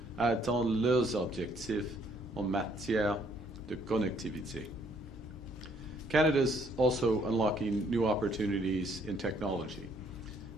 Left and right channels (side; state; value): both; normal; correlation 0.66